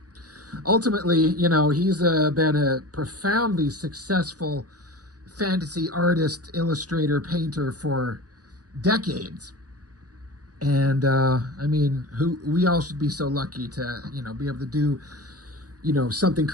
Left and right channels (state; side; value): late; left; 0.68 ms